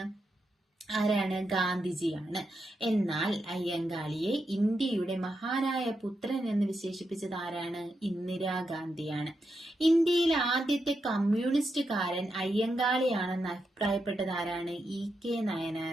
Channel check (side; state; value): both; normal; correlation 0.85